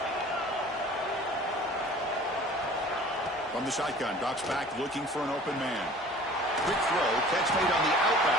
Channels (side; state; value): both; normal; correlation 0.46